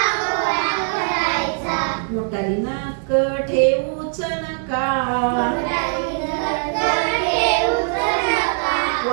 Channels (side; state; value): left; silent; 65 dB below the other